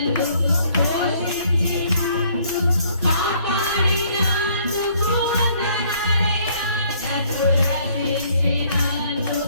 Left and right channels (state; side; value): inverted; both; correlation -0.63